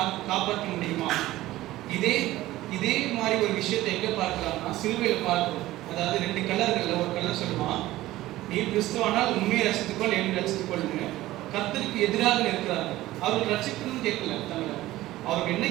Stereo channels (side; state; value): left; quieter; 16.3 dB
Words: காப்பாற்ற முடியுமா? இதே மாதிரி ஒரு விஷயத்தை எங்க பார்க்கலாம்னா சிலுவையில் பார்க்கிறோம். அதாவது 2 கல்லர்கள்ல ஒரு கல்லர் சொல்லுவான், நீ கிறிஸ்துவானால் உண்மையை ரசித்துக்கொள், என்னை ரசித்துக்கொள்னு கர்த்தருக்கு எதிராக நிற்கிறார்கள். அவர்கள் ரசிக்கணும்னு கேட்கல, தவிர அவர்கள் என்ன